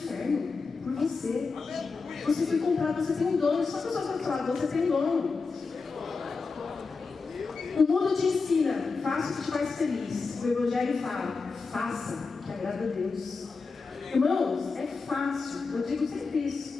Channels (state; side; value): quieter; right; 4.5 dB